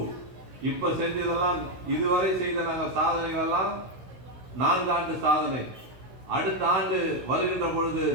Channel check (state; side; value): late; left; 16 ms